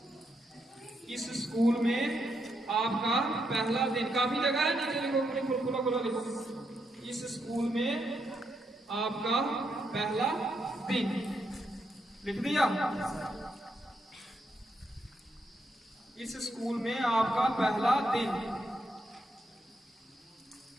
इस स्कूल में आपका पहला दिन, काफी जगह है, नीचे लिखो, खुला खुला लिखो, इस स्कूल में आपका पहला दिन, लिख दिया। इस स्कूल में आपका पहला दिन।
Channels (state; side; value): normal; both; correlation 0.80